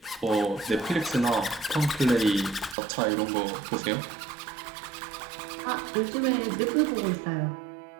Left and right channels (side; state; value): left; drops out; at 2.8 s